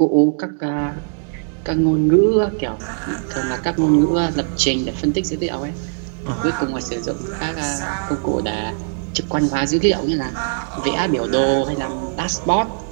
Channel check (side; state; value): left; silent; digital silence